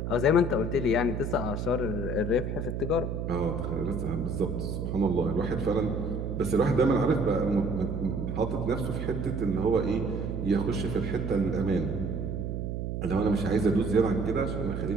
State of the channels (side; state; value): right; noise; hum, 3 dB below the sound